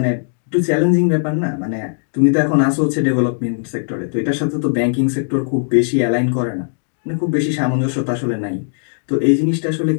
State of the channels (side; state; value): right; silent; digital silence